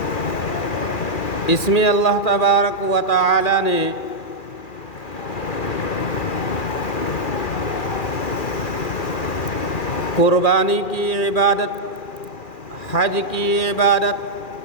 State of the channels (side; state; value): right; late; 2.4 ms